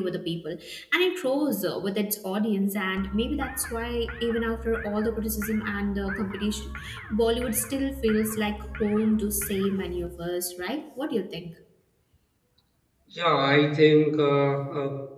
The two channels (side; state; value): both; identical; correlation 1.00